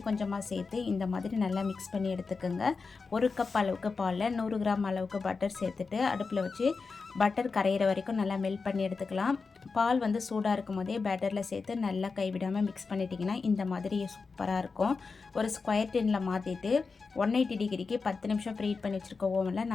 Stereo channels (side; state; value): right; quieter; 4.6 dB